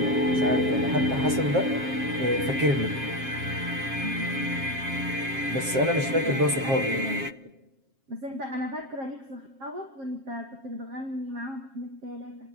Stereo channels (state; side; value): late; left; 7.5 ms